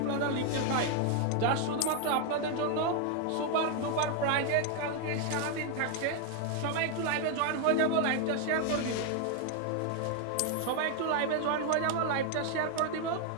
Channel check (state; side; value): different; both; correlation 0.01